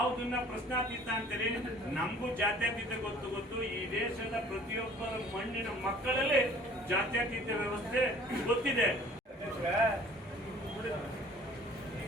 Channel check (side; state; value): both; normal; correlation 0.51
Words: ಪ್ರಶ್ನಾತೀತ ಅಂತೀರಿ, ನಮಗೂ ಜಾತ್ಯತೀತ ಗೊತ್ತು. ಈ ದೇಶದ ಪ್ರತಿಯೊಬ್ಬರ ಮಣ್ಣಿನ ಮಕ್ಕಳಲ್ಲಿ ಜಾತ್ಯತೀತ ವ್ಯವಸ್ಥೆ ಗೊತ್ತಿದೆ.